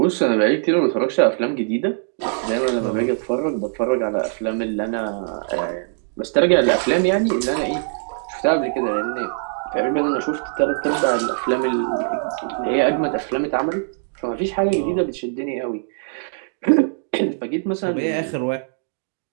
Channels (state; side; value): silent; left; digital silence